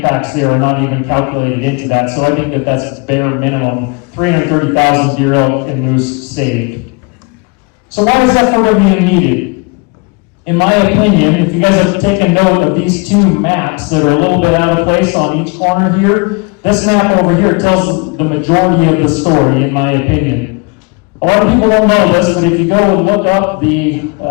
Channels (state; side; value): quieter; right; 30.3 dB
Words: there are not even calculated into that, so I think that that's bare minimum, 330,000 deer, elk, and moose saved. So why is F4WM needed? In my opinion, if you guys have taken note of these two maps that are a little bit out of place on each corner here, this map over here tells the majority of the story, in my opinion. A lot of people don't know this, but if you go and look up the